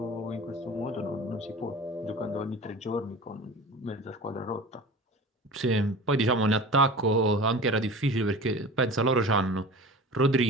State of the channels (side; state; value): both; normal; correlation 0.37